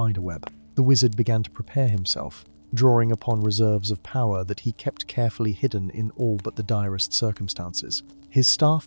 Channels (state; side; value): inverted; both; correlation -1.00